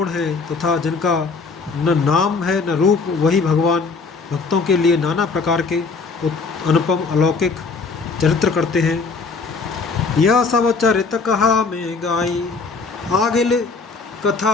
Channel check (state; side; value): quieter; right; 4.4 dB